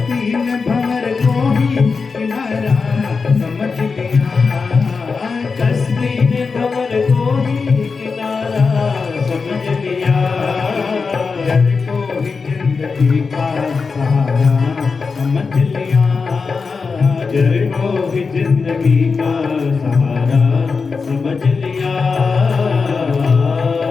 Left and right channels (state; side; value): quieter; right; 4.8 dB